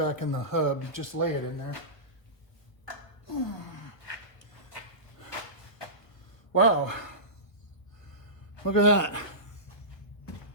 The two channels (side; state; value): right; late; 1.5 ms